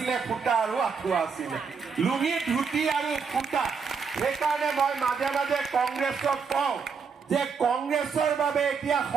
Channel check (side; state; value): left; quieter; 5.7 dB